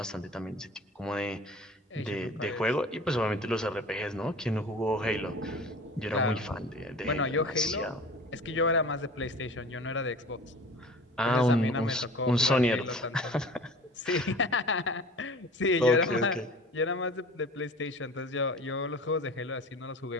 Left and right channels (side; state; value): both; normal; correlation 0.41